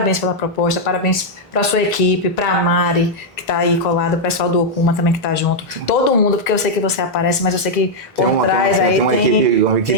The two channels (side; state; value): both; normal; correlation -0.03